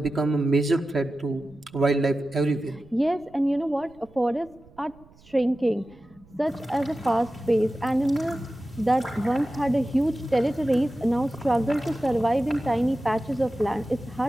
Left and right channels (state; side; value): noise; right; rumble, 26 dB below the sound